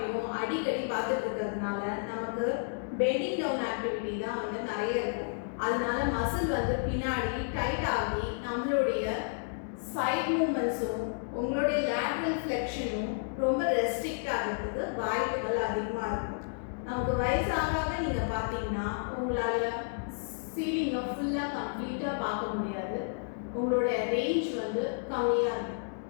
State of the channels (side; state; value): right; silent; digital silence